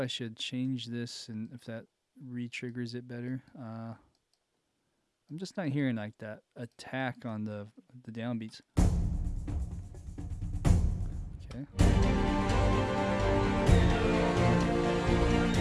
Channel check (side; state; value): both; identical; correlation 1.00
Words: should change this and if that re-triggers it better. I'm just not hearing like that attack on the downbeats. Okay.